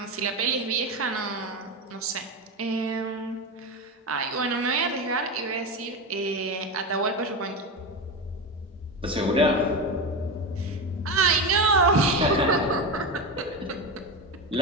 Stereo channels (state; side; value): normal; both; correlation 0.19